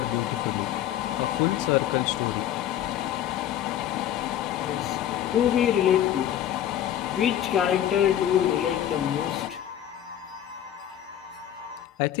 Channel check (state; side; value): quieter; right; 11.2 dB